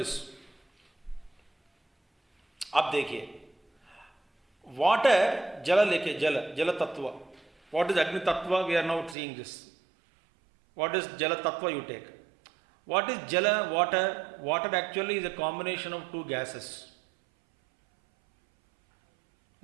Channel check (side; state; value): left; drops out; at 9.2 s